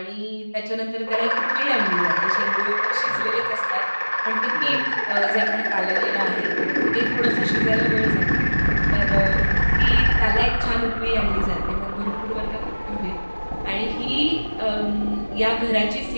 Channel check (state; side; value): inverted; both; correlation -1.00